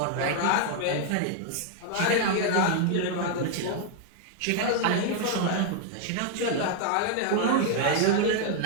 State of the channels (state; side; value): different; both; correlation 0.00